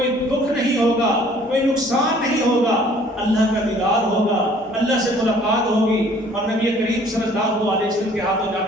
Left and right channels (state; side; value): normal; both; correlation 0.56